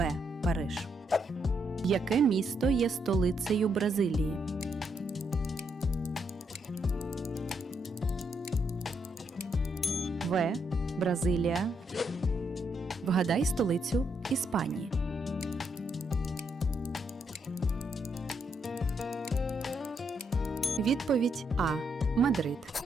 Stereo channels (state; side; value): normal; both; correlation 0.77